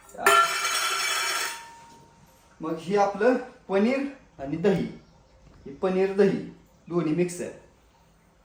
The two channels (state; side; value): identical; both; correlation 1.00